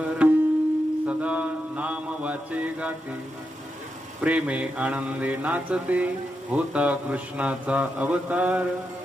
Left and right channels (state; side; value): normal; both; correlation 0.86